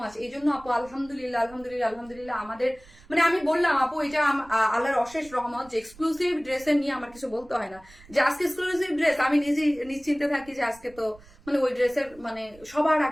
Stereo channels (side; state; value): right; noise; rumble, 23 dB below the sound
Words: মাচ। এই জন্য আপু আলহামদুলিল্লাহ আলহামদুলিল্লাহ আলহামদুলিল্লাহ আমাদের মানে আমি বললাম আপু এটা আল্লাহর অশেষ রহমত যে এক্সক্লুসিভ ড্রেসের নিয়ে আমার কিছু বলতে হয় না। যে আজকে এক্সক্লুসিভ ড্রেস আমি নিজেই নিশ্চিন্তে থাকি যে আজকে তো মানে ওই ড্রেসের মানে সবার